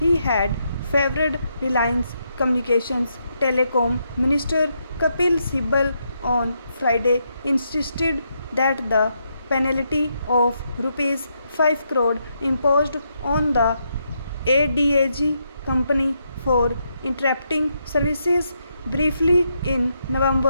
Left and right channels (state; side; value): inverted; both; correlation -0.80